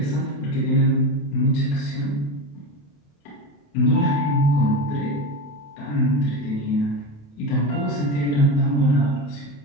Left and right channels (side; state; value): right; late; 28 ms